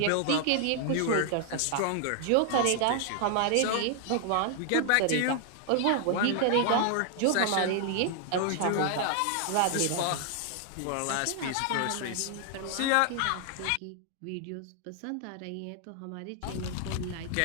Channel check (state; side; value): different; both; correlation 0.00